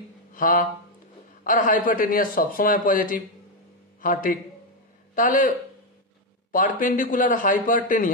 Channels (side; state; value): both; normal; correlation 0.04